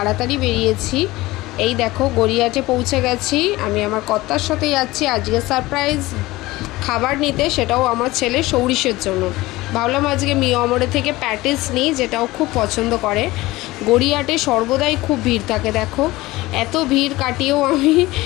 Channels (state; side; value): quieter; right; 19.3 dB